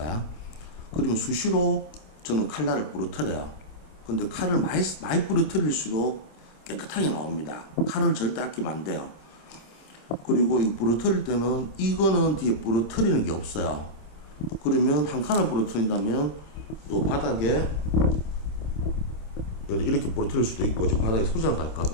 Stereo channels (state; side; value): late; right; 26 ms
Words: 그러면 수시로 저는 칼날을 부러뜨려요. 근데 칼을 많이 부러뜨릴수록 깨끗하게 나옵니다. 칼을 절대 아끼면 안 돼요. 그리고 이 부러뜨릴 때는 이거는 뒤에 부러뜨리는 게 없어요. 그러면 한 칸을 부러뜨린다면 요 바닥에 이렇게 부러뜨릴 수도 있고 지금 바닥에 소지나